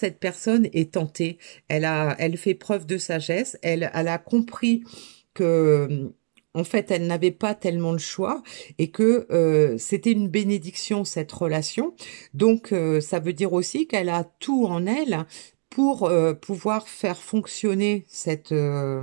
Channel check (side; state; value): left; silent; digital silence